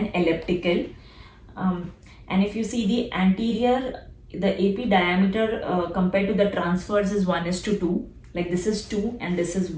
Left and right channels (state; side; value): identical; both; correlation 1.00